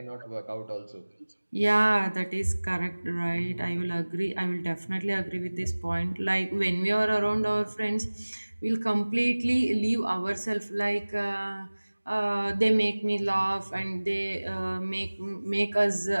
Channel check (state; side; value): inverted; both; correlation -1.00